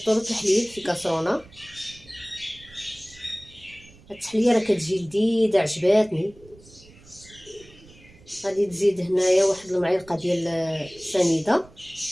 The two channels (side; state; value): right; noise; rumble, 24 dB below the sound